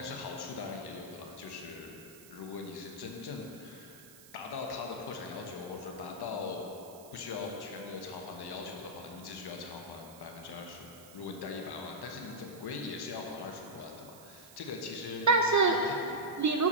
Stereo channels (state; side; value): noise; right; hiss, 19 dB below the sound